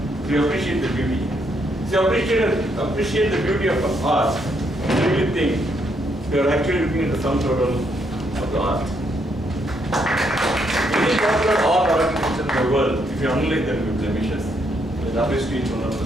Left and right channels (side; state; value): both; normal; correlation 0.75